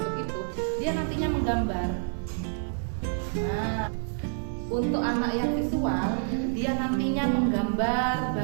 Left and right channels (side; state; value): left; silent; digital silence